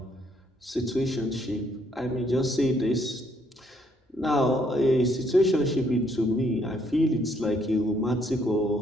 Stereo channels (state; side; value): normal; both; correlation 0.69